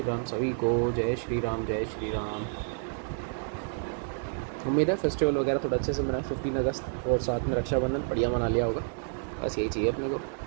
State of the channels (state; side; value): silent; left; 57 dB below the other